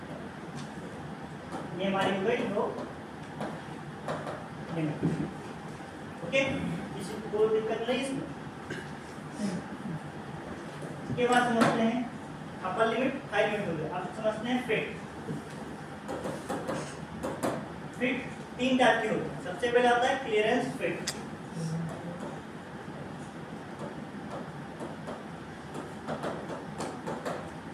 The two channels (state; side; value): identical; both; correlation 1.00